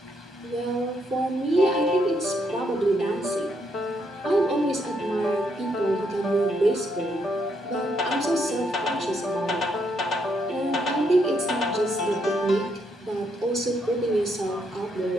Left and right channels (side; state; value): both; normal; correlation 0.75